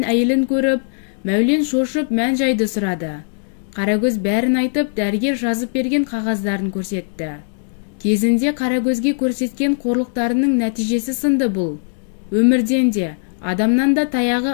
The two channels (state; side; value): silent; right; digital silence